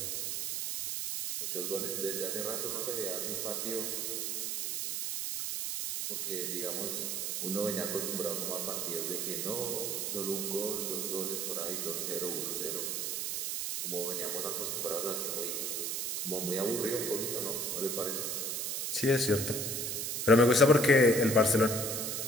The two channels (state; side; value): noise; right; hiss, 1 dB below the sound